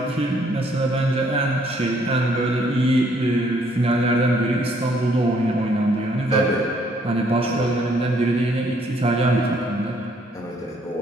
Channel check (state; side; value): normal; both; correlation 0.66